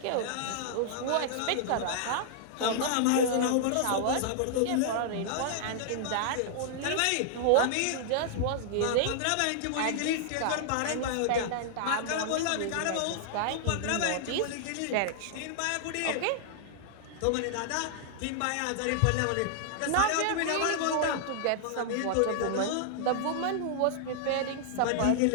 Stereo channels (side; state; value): both; different; correlation -0.01